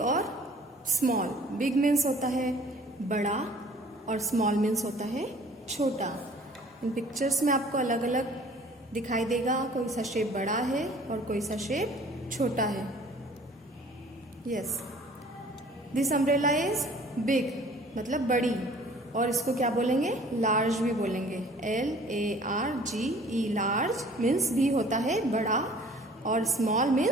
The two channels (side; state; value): both; normal; correlation 0.51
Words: small. Big means होता है बड़ा और small means होता है छोटा. इन pictures में आपको अलग अलग दिखाई देगा. कोई सा शेप बड़ा है और कोई सा शेप छोटा है. Yes. This umbrella is big, मतलब बड़ी, और इसको क्या बोलेंगे? लार्ज भी बोलेंगे. LARGE. लार्ज मीन्स भी होता है बड़ा और स्मॉल